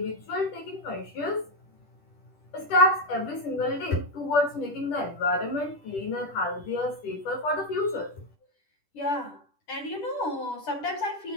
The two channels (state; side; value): late; right; 10 ms